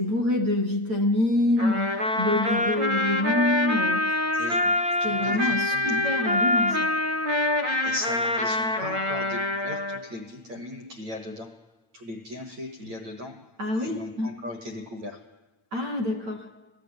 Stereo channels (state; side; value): late; left; 8.9 ms